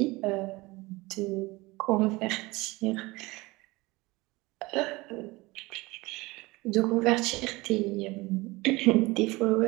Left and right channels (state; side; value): quieter; left; 22.2 dB